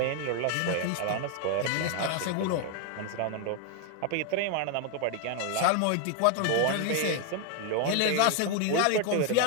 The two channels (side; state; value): both; different; correlation 0.01